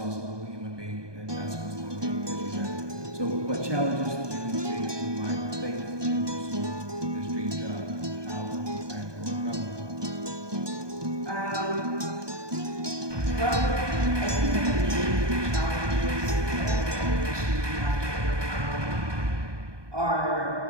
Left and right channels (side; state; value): left; late; 1.2 ms